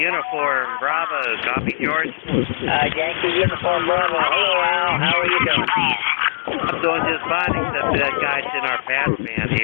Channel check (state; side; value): silent; right; digital silence